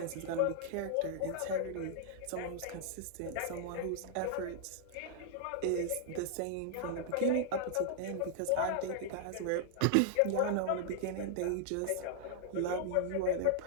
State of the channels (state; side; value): different; both; correlation -0.01